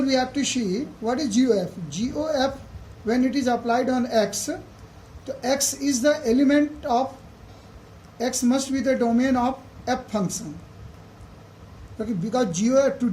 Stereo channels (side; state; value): both; identical; correlation 1.00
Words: we have to see what is GOF. GOF when it is applied on X, so x is the element of x must be the domain of f function. Okay, because GOF, to